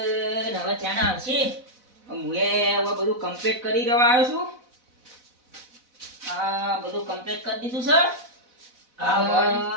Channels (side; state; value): left; late; 4.0 ms